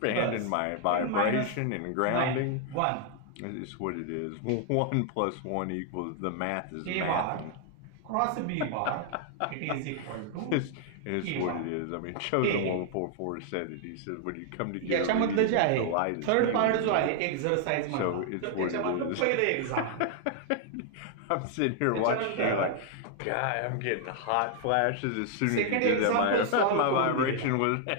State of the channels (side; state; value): both; different; correlation 0.00